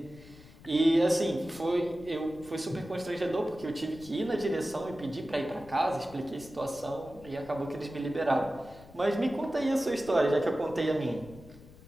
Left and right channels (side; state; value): left; noise; rumble, 20 dB below the sound